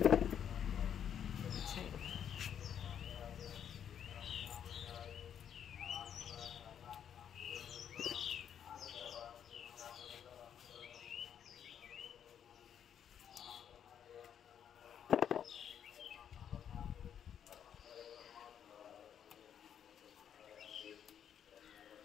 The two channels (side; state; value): right; quieter; 8.8 dB